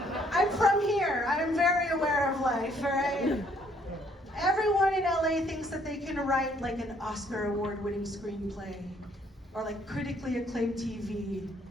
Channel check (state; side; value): normal; both; correlation 0.65